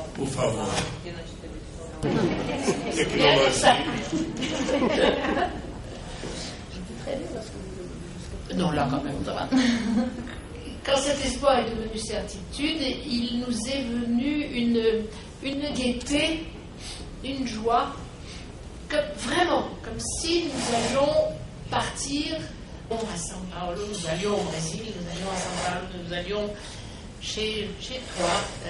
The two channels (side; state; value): both; identical; correlation 1.00